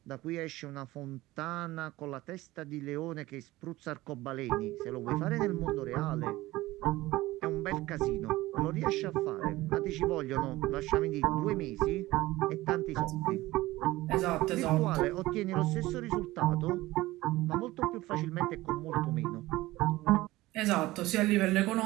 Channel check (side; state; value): left; quieter; 18.2 dB